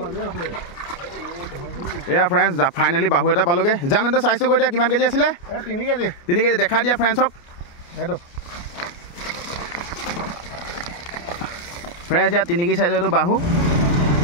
এয়া ফ্ৰেণ্ডছ ফাইনেলি বাহু এটা পালোগে জানো চাইছোঁ গৈ দিয়া কিমান কেজি আছিলে 3 কেজি দেখাই দিয়া ফ্ৰেণ্ডছক সেইটো ফ্ৰেণ্ডছ ইয়াত 3 কেজি চাইজৰ এইটো বাহু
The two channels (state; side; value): late; right; 29 ms